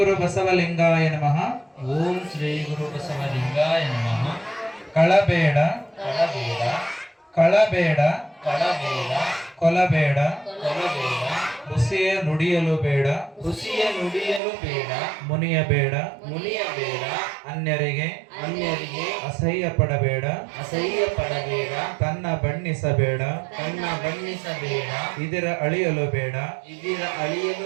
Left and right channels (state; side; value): drops out; left; at 14.4 s